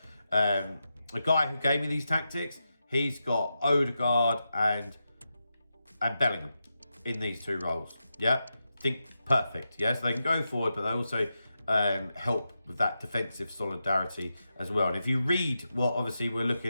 The guy who gave me these tactics, he's got Odegaard and Bellingham in these 2 roles. Yeah, think perfect. Yeah, so they can go forward, but they also help with that defensive solidarity as well. And if you read what obviously we're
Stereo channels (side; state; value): both; inverted; correlation -0.89